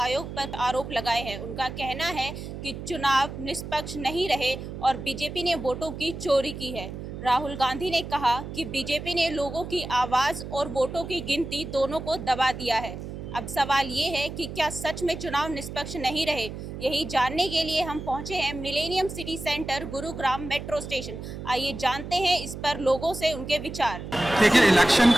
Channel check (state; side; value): noise; right; hum, 9 dB below the sound